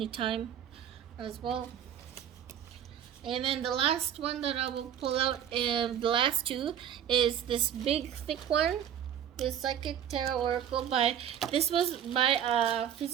as well. And then the last one that I will pull out, the last two, is this big thick one. The Psychic Tarot Oracle this was by a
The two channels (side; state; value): left; quieter; 9.5 dB